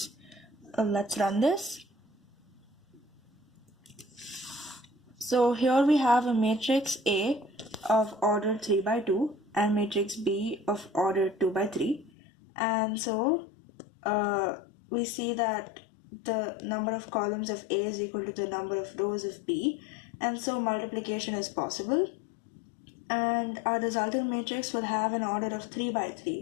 Let's run this. So here we have a matrix A of order 3 by 2 and matrix B of order 2 by 3. And so we see that the number of columns of A is equal to the number of rows of B, and so multiplication is possible. And our resultant matrix will have an order of 3 by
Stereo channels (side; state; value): right; drops out; at 12.1 s